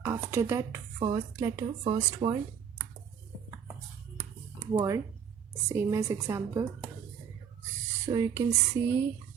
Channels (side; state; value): left; quieter; 7.7 dB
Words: After that, first letter, first word, same as example. So you can see